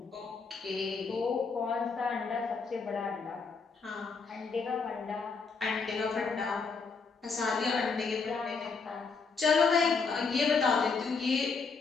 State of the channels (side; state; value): right; quieter; 4.8 dB